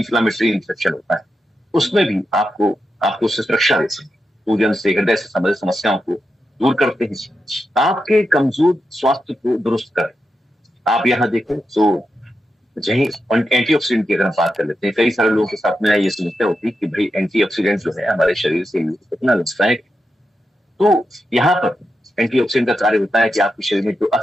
इन्फेक्शन होता है, उसमें भी आपको उससे सुरक्षा देते हैं। सूजन से, हृदय से संबंधित समस्याओं को दूर करते हैं, आपके कमजोर स्वास्थ्य को दुरुस्त करें। आप यहाँ देखें तो यही एंटीऑक्सीडेंट की अगर हम बात कर लेते हैं, कई सारे लोगों के साथ में ये समस्या होती है कि भाई एंटीऑक्सीडेंट जो है हमारे शरीर से कितना नुकसानदायक। तो यहाँ पर एंटीऑक्सीडेंट का कार्य होता है कि आपके शरीर में जो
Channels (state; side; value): normal; both; correlation 0.87